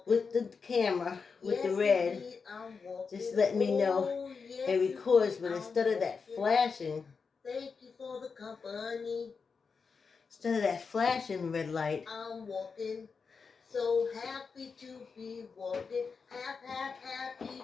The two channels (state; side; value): quieter; right; 5.2 dB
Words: with the camera, with the red. Indeed, Just let me know it records, but instead of that flashing, thank you for the company. Instead of that flashing red light, I'm walking. So happy to be walking. Happy